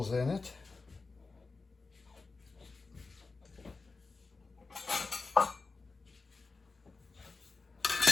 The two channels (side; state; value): right; quieter; 4.0 dB